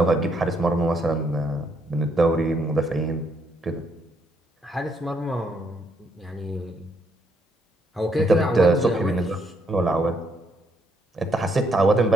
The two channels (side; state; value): both; normal; correlation 0.73